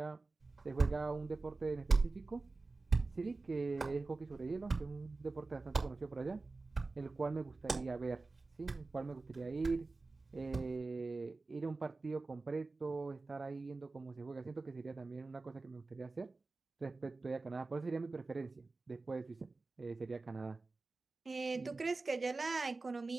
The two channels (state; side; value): quieter; left; 3.6 dB